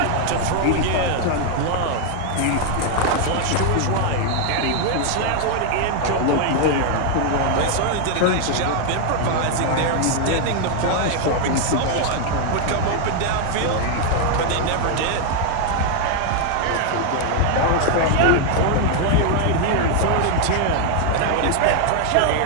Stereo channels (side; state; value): both; different; correlation 0.00